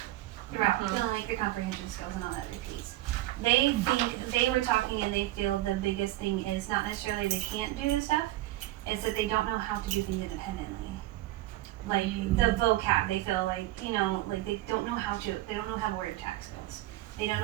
throughout. You know, like the comprehension skills and all that repeats. They think they were talking and they feel the biggest thing is not necessarily they can't do this stuff, it's that they don't know how to do things independently. Like the vocab, they feel like, you know, like they don't know how word attack skills. They don't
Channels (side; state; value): left; quieter; 16.3 dB